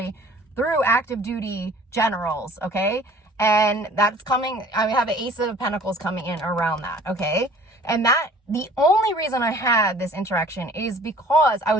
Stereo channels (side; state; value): both; normal; correlation 0.50